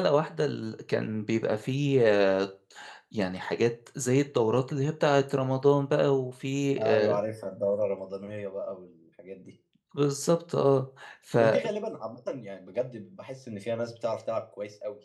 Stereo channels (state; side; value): identical; both; correlation 1.00